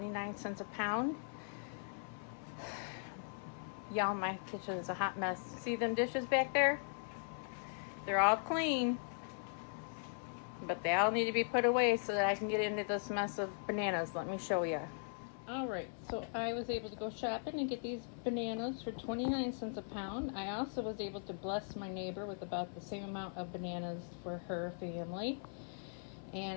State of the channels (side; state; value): right; silent; 52 dB below the other